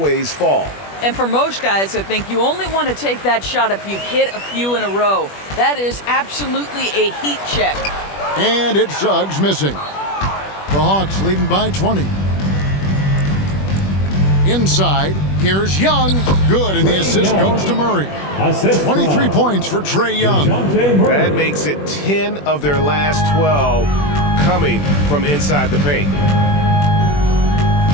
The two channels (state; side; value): late; right; 21 ms